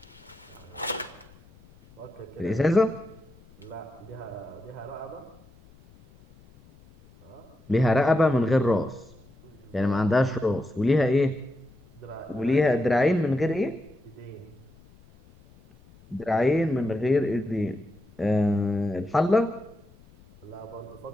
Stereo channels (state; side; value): noise; left; rumble, 26 dB below the sound